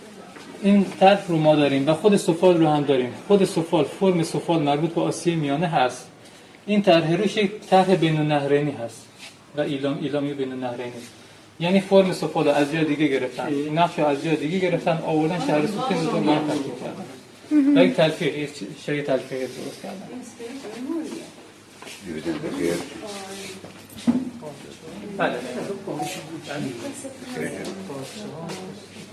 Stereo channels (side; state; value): both; identical; correlation 1.00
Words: این طرح رو ما داریم و خود سفال رو هم داریم. خود سفال، فرم سفال مربوط به آسیای میانه هست. این طرح روش یک طرح بین النهرینی هست و ایلامی بین النهرینی. یعنی فرم سفال رو از جای دیگه گرفتن، نقش رو از جای دیگه گرفتن، آوردن شهر سوخته رو ما ترکیب کردن. و یک تلفیق، یک شیء تلفیق درست کردن. بله.